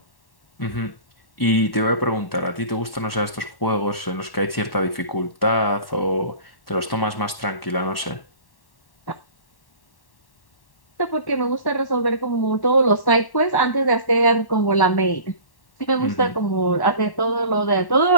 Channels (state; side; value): late; right; 1.1 ms